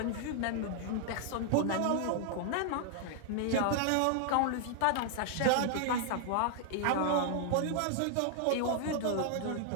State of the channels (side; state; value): both; different; correlation 0.00